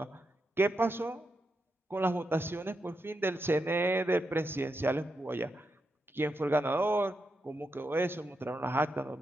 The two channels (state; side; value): normal; both; correlation 0.85